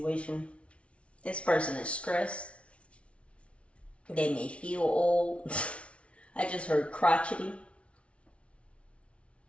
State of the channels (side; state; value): right; late; 0.061 ms